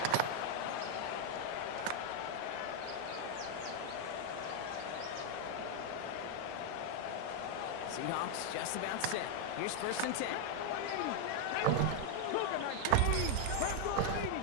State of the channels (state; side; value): different; both; correlation 0.00